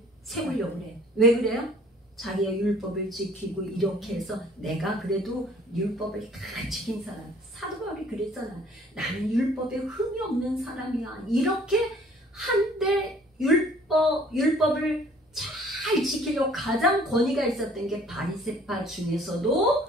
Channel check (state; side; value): normal; both; correlation 0.55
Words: 세우려고 그래. 왜 그래요? 자기가 율법을 지키고 이렇게 해서 내가 그래도 율법을 다 지킨 사람. 사도 바울이 그랬잖아. 나는 율법에 흠이 없는 사람이야. 이렇게 한때 율법을 잘 지키려고 가장 권위가 있었던 게 바리새파 중에서도